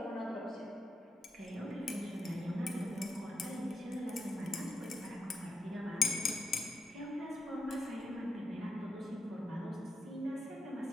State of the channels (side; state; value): both; normal; correlation 0.83